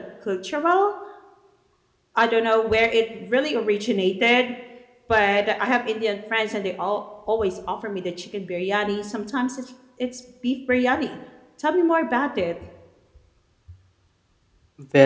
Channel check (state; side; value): identical; both; correlation 1.00